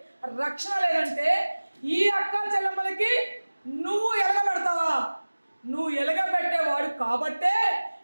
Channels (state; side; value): inverted; both; correlation -1.00